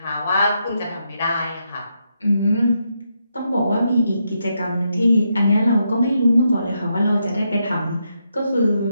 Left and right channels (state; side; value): inverted; both; correlation -0.81